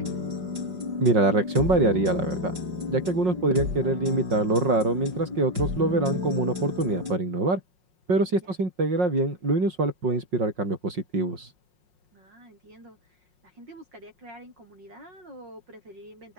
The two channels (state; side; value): late; left; 5.5 ms